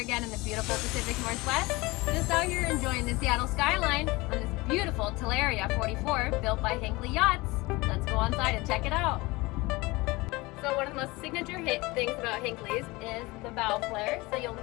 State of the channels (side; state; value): right; quieter; 22.7 dB